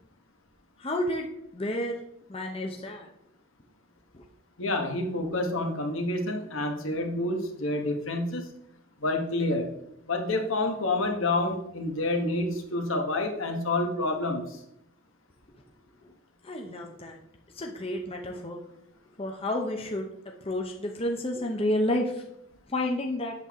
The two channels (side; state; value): both; normal; correlation 0.25